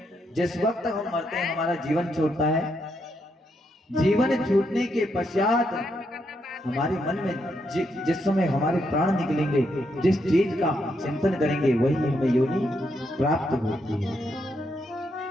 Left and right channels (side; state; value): both; normal; correlation 0.79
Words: जिस वक्त हम मरते हैं हमारा जीवन छूटता है। जीवन छूटने के पश्चात हमारे मन में जिस समय हमारे प्राण निकलेंगे, जिस चीज का चिंतन करेंगे वही हमें योनि प्राप्त होती है।